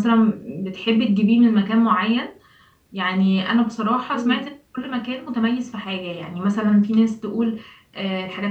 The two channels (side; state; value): both; identical; correlation 1.00